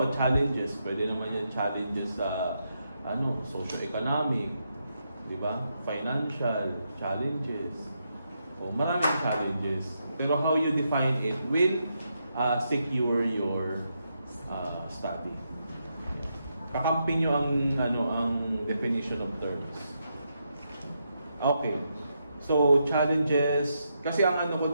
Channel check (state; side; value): inverted; both; correlation -0.82